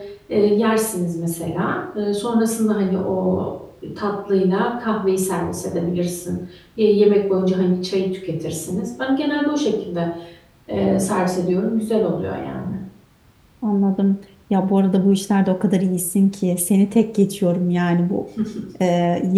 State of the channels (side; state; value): both; identical; correlation 1.00